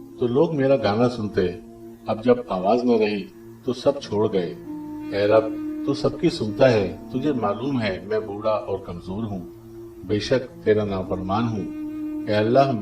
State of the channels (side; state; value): both; identical; correlation 1.00